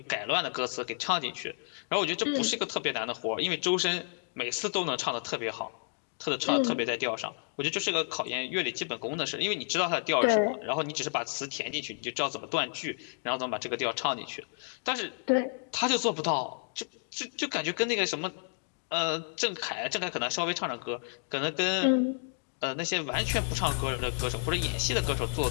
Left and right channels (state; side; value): silent; right; digital silence